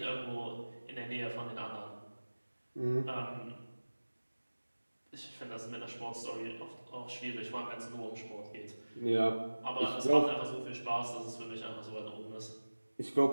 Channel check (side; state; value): both; inverted; correlation -1.00